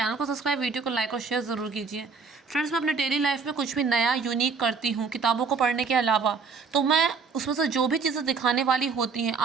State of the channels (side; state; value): left; quieter; 5.1 dB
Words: को सब्सक्राइब, वीडियो को लाइक और शेयर ज़रूर कीजिए। फ्रेंड्स, मैं अपने डेली लाइफ में कुछ भी नया यूनिक करती हूँ किताबों को पढ़ने के अलावा, तो मैं उसमें से जो भी चीज़ें दिखाने वाली होती हैं